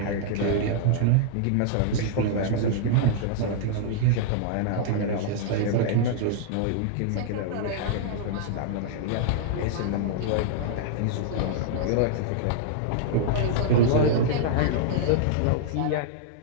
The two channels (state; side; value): different; both; correlation -0.01